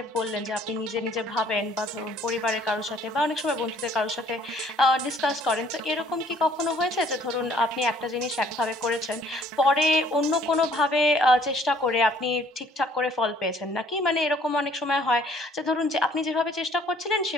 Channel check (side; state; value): both; normal; correlation 0.59